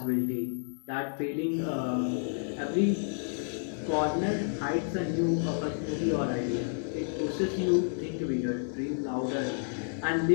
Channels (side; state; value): right; silent; digital silence